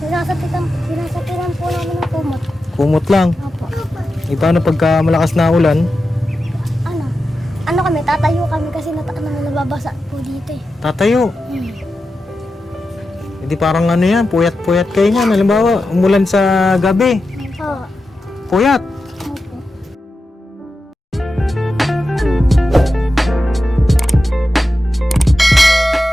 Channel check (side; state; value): both; normal; correlation 0.91